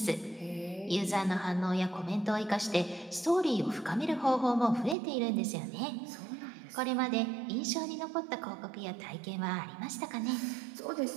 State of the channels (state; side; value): drops out; left; at 5.0 s